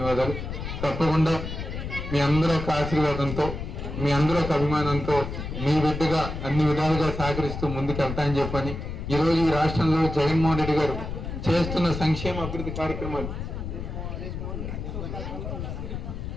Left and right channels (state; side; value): noise; left; rumble, 6 dB below the sound